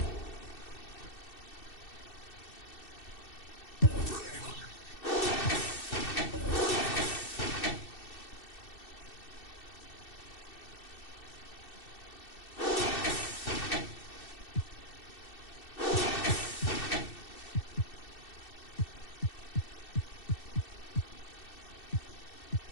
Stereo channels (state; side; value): late; right; 2.6 ms